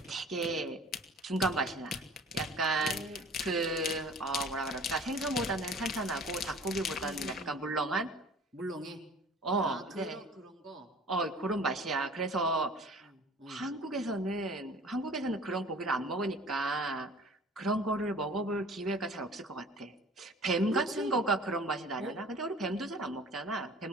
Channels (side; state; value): both; normal; correlation 0.46